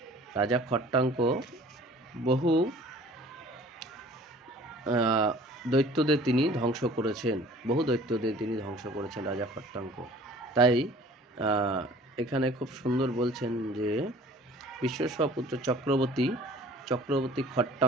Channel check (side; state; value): both; normal; correlation 0.49